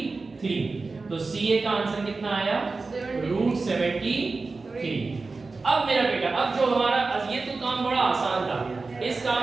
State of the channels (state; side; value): quieter; left; 3.9 dB